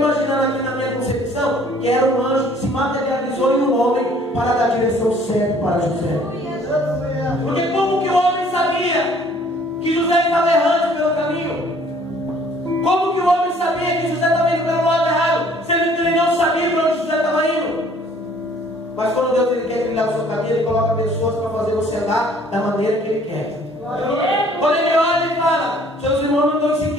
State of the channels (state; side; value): normal; both; correlation 0.57